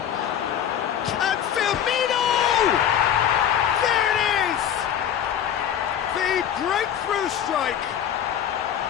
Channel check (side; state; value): right; quieter; 9.6 dB